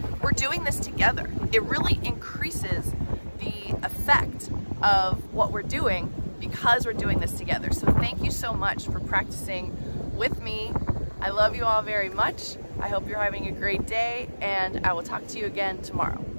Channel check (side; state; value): both; inverted; correlation -1.00